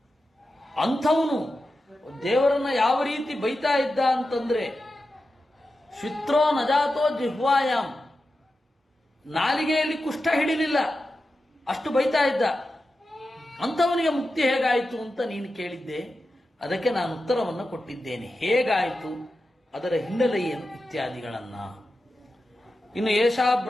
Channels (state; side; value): normal; both; correlation 0.91